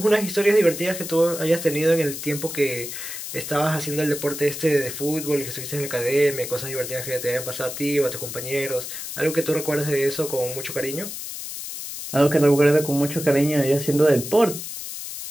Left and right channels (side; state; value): left; noise; hiss, 8 dB below the sound